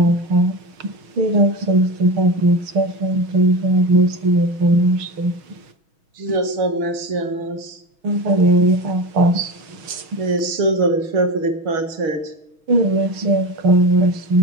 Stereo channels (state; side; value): late; left; 6.3 ms